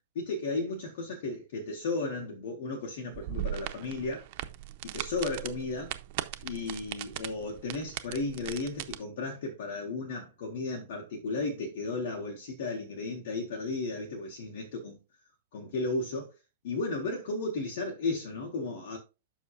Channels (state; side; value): inverted; both; correlation -0.31